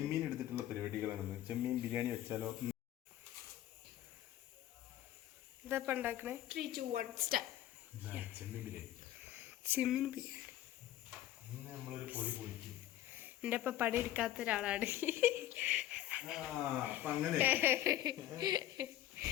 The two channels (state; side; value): quieter; right; 13.3 dB